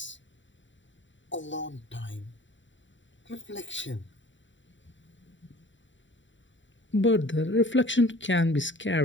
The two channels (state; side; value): late; right; 0.54 ms